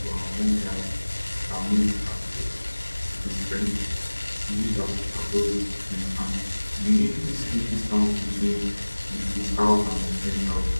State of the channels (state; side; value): inverted; both; correlation -1.00